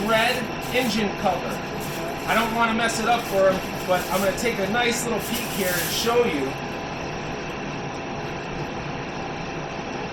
red engine cover. I don't want to mess it up for him, but I'm going to take a nice little peek here and show you.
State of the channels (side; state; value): both; identical; correlation 1.00